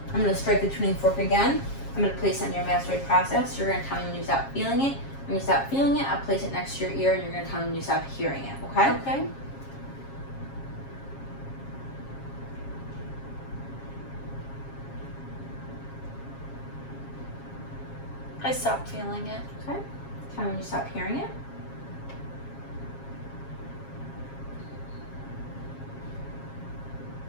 I'm going to strike the tuning fork again. I'm going to place it on your mastoid process. You're going to tell me when you stop feeling it. When you stop feeling it, I'll place it next to your ear, and you're going to tell me when you stop hearing it, okay? Okay. I stopped feeling it. Okay. Tell me when you stop hearing it.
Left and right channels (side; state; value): right; late; 7.4 ms